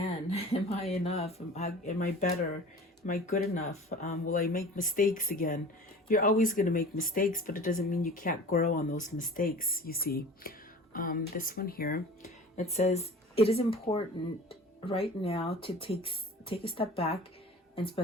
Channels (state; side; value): normal; both; correlation 0.40